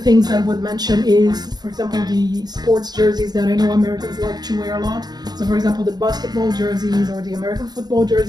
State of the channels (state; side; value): late; left; 0.20 ms